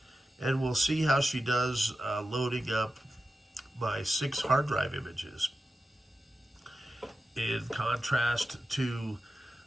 and we'll see how she does loading up my 6 hard drive images. In contrast to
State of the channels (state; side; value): normal; both; correlation 0.92